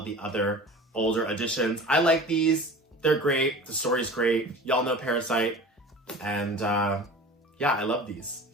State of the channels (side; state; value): both; normal; correlation 0.38